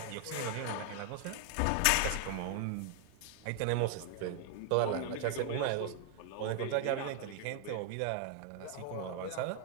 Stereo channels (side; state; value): both; different; correlation 0.00